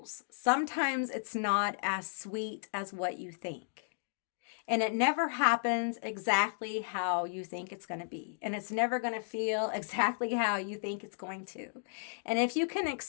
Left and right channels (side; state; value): right; silent; digital silence